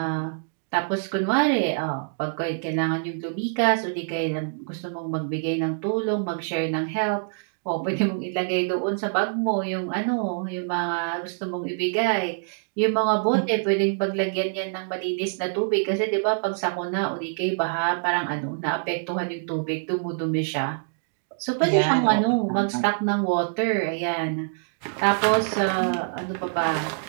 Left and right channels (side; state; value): left; silent; digital silence